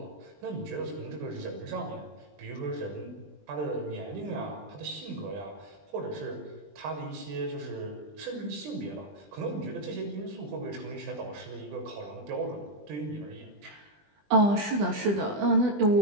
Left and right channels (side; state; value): left; late; 20 ms